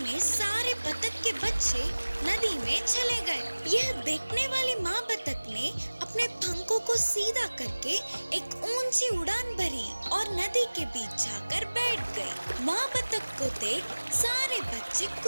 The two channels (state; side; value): inverted; both; correlation -1.00